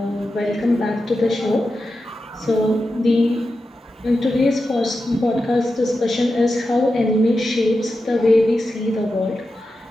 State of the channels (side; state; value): both; normal; correlation 0.90